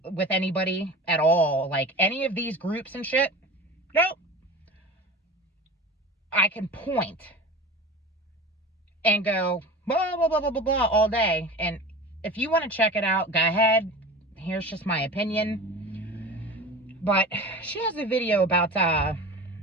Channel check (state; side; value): normal; both; correlation 0.34